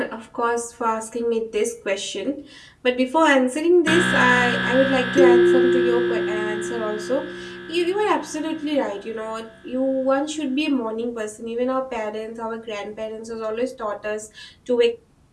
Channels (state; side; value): identical; both; correlation 1.00